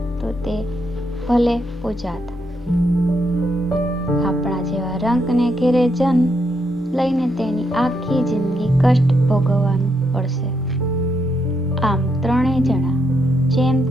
તો તે ભલે પૂજાત. આપણા જેવા રંકને ઘેરે જન્મ લઈને તેની આખી જિંદગી કષ્ટ ભોગવવાનું પડશે. આમ 3 જણા જેમ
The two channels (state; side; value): normal; both; correlation 0.79